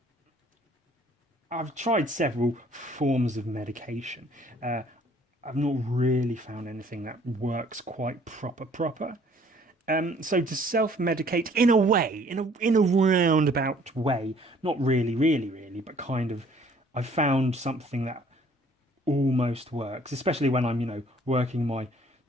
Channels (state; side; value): normal; both; correlation 0.58